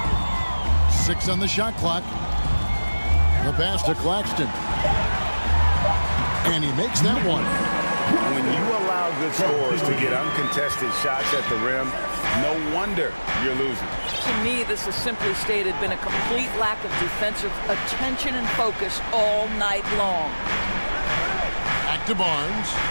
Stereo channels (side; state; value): both; inverted; correlation -1.00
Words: Six on the shot clock. The pass to Claxton. And he makes that one. When you allow good scorers to get uncontested shots at the rim, no wonder you're losing. To me, this has simply stated been a complete lack of defensive attention and focus all night long. Back to Barnes.